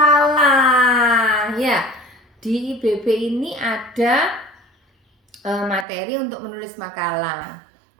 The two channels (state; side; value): drops out; left; at 5.9 s